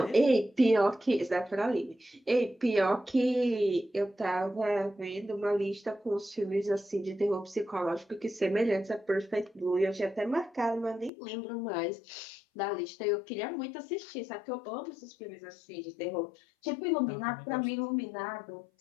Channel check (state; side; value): drops out; right; at 11.1 s